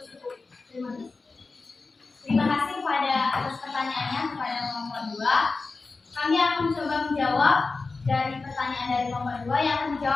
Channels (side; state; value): right; quieter; 3.9 dB